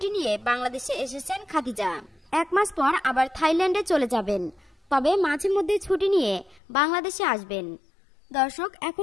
নিয়ে বাংলাদেশে এসেছেন খাদিজা। 1 মাস পর আবার থাইল্যান্ডে চলে যাবেন, তবে মাঝে মধ্যে ছুটি নিয়ে বাংলাদেশে আসবেন। দর্শক,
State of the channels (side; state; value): right; drops out; at 6.6 s